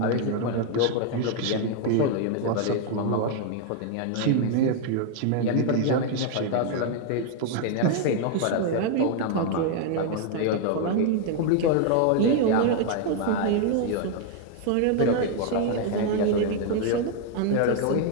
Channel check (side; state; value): both; different; correlation 0.00